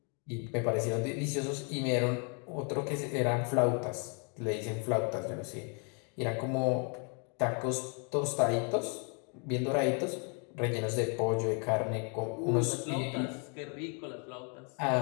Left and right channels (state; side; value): quieter; right; 37.4 dB